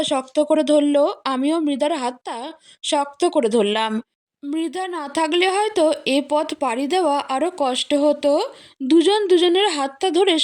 শক্ত করে ধরলো, আমিও মৃধার হাতটা শক্ত করে ধরলাম। মৃধা না থাকলে হয়তো এ পথ পাড়ি দেওয়া আরও কষ্ট হতো। দুজন দুজনের হাতটা ধরে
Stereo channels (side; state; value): both; identical; correlation 1.00